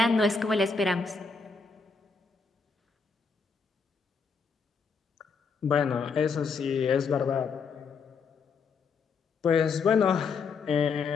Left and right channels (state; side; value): quieter; right; 5.1 dB